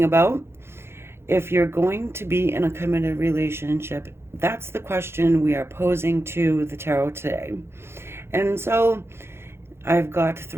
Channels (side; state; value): left; late; 0.12 ms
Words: about. If you're going to be in a committed relationship, that's the question we are posing to the tarot today. And so I've got